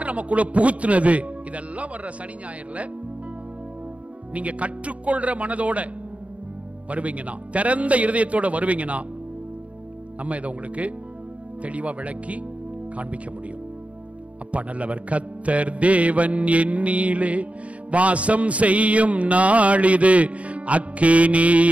நமக்குள்ள புகுத்துனது, இதெல்லாம் வர்ற சனி ஞாயிறுல நீங்க கற்றுக்கொள்ற மனதோட வருவீங்கன்னா, திறந்த இருதயத்தோட வருவீங்கன்னா நம்ம இதை உங்களுக்கு தெளிவா விளக்கி காண்பிக்க முடியும். அப்பா நல்லவர். கர்த்தர் தேவன் என்னிலே வாசம் செய்யும் நாளிது,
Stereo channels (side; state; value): left; late; 0.066 ms